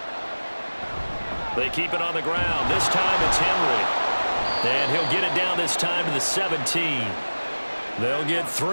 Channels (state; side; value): inverted; both; correlation -1.00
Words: They keep it on the ground. This time it's Henry. And he'll get it down this time to the 17. They'll get